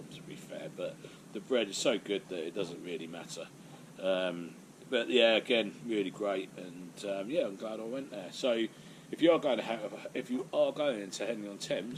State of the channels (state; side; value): identical; both; correlation 1.00